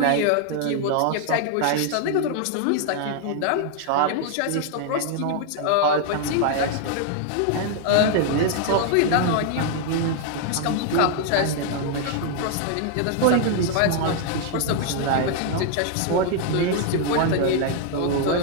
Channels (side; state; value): both; different; correlation 0.00